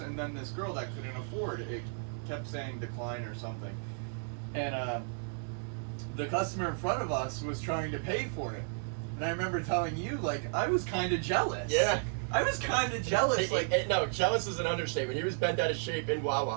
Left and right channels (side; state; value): left; silent; 56 dB below the other